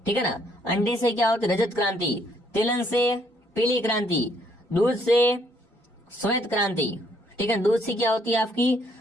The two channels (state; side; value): normal; both; correlation 0.68